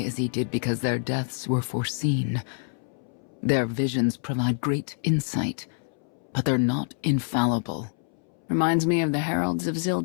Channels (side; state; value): right; silent; 60 dB below the other